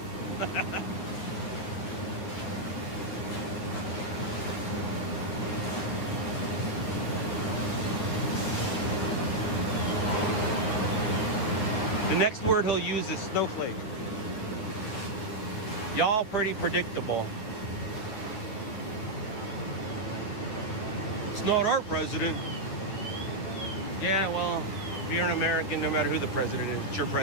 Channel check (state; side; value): late; right; 9.9 ms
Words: The next word he'll use is snowflake. Y'all pretty predictable. It's not our president. Yeah, well, if you're an American, no matter who the president is, it's your